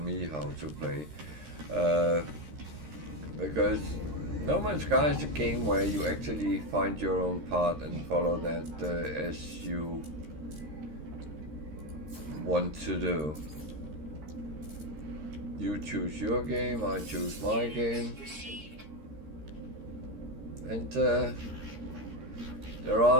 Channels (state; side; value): late; left; 13 ms